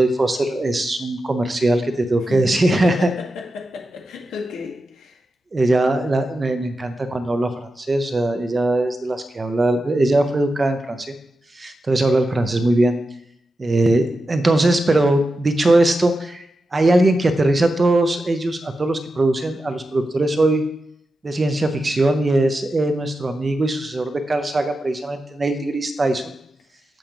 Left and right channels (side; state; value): both; normal; correlation 0.90